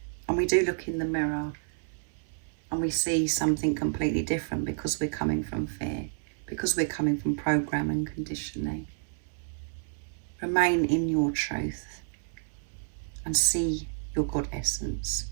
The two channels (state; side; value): silent; left; 58 dB below the other